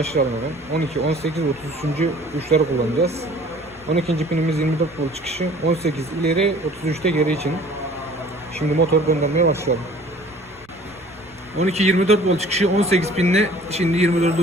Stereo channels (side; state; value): right; noise; rumble, 28 dB below the sound